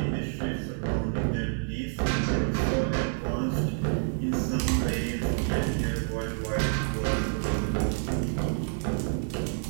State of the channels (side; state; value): left; silent; 59 dB below the other